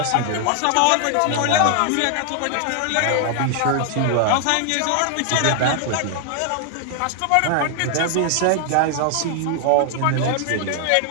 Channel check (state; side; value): different; both; correlation 0.00